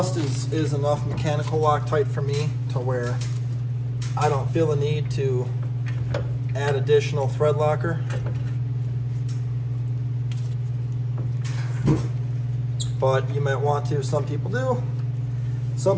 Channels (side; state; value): both; identical; correlation 1.00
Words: is enough mechanical Loctite for me to where I don't feel the need to add additional thread locker. But you might want to. Some people do, some